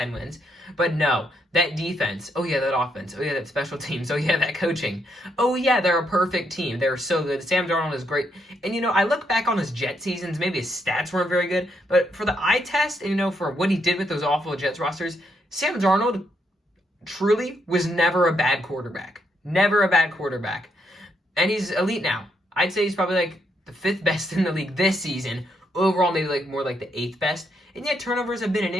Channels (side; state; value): both; normal; correlation 0.76